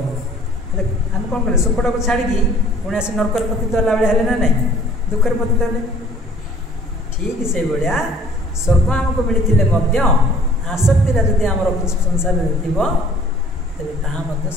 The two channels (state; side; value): normal; both; correlation 0.55